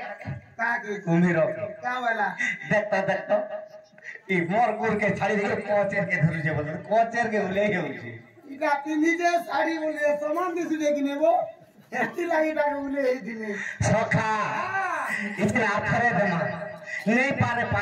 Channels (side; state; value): both; identical; correlation 1.00